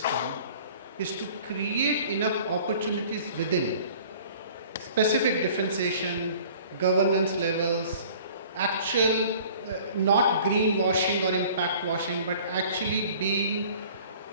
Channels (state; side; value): inverted; both; correlation -0.49